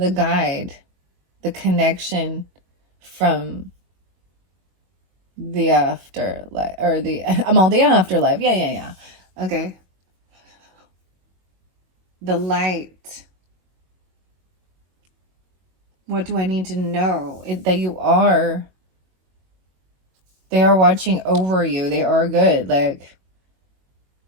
guide. The connection from the afterlife, or the afterlife. Yeah. Okay. The light. What do I need to know? That you are. They are watching over you. They are good. Like,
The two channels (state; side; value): late; left; 22 ms